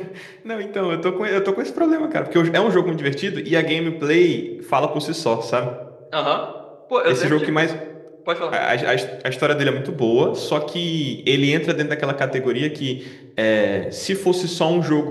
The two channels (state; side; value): identical; both; correlation 1.00